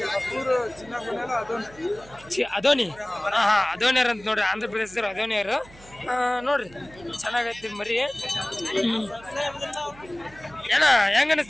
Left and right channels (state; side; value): noise; right; hum, 22 dB below the sound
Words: ಅದೋನಿ. ಅದೋನಿಯರ್ ಅಂತ ನೋಡ್ರಿ. ಆಂಧ್ರ ಪ್ರದೇಶದವ್ರು ಅದೋನಿಯರು ನೋಡ್ರಿ. ಚೆನ್ನಾಗೈತಿ ಮರಿ. ಏನ ಹೆಂಗ